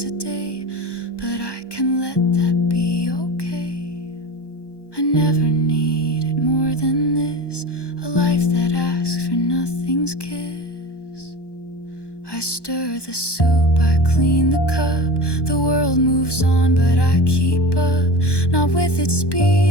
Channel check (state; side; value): late; right; 1.1 ms